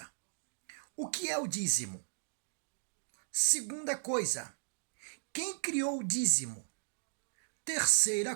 o que é o dízimo? Segunda coisa, quem criou o dízimo?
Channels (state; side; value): silent; left; digital silence